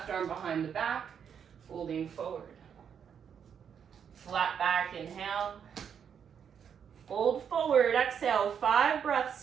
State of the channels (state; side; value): quieter; left; 7.7 dB